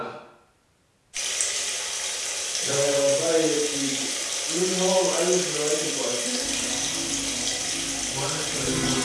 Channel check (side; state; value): both; identical; correlation 1.00